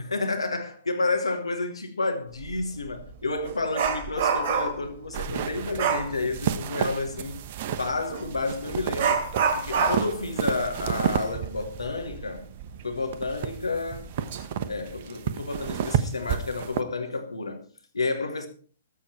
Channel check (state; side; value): inverted; both; correlation -0.57